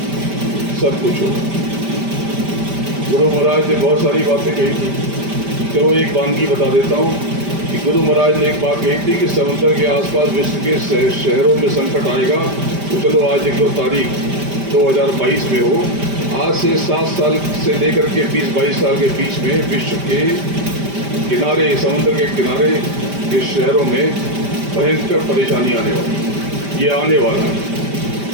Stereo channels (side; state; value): left; late; 5.1 ms